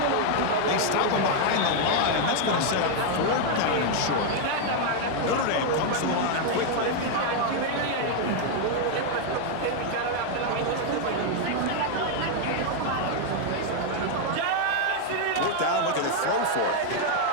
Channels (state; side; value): different; both; correlation 0.00